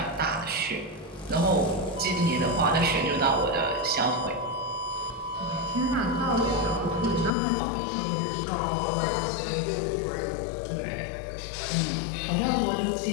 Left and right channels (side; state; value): right; drops out; at 7.3 s